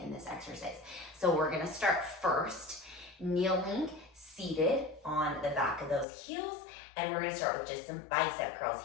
this exercise. So we're going to start first kneeling, seated on the back of those heels, and we're going to start with just some bicep curls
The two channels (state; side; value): drops out; right; at 6.1 s